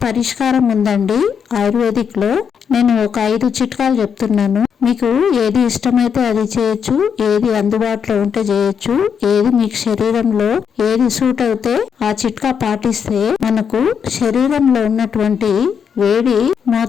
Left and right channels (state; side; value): quieter; right; 7.1 dB